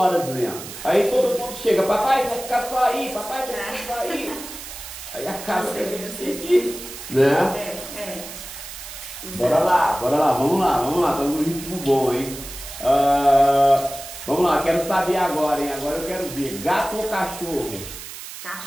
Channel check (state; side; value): noise; right; hiss, 12 dB below the sound